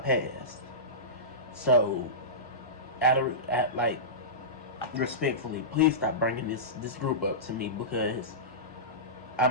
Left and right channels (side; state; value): both; normal; correlation -0.19